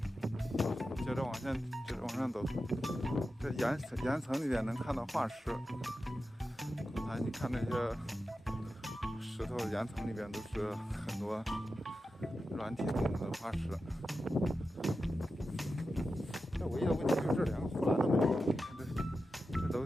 接着往上走，这岩层里面能看到化石。刚才你看那些石头岩层里边都是很多软体动物的化石。这唯一的问题就是这两个护栏都没有，这楼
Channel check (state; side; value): normal; both; correlation 0.91